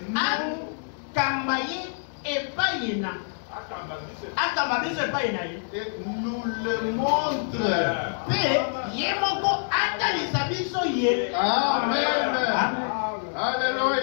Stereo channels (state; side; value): silent; right; digital silence